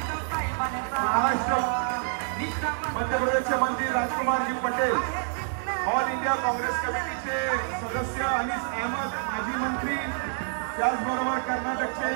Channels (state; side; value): silent; left; digital silence